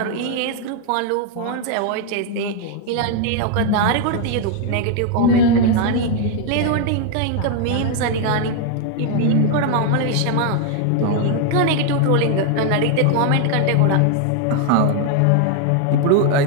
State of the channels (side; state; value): both; different; correlation 0.00